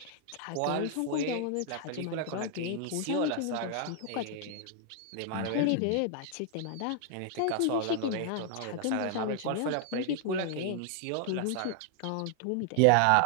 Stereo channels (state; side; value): different; both; correlation 0.00